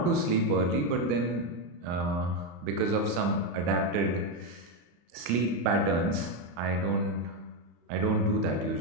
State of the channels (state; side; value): late; left; 34 ms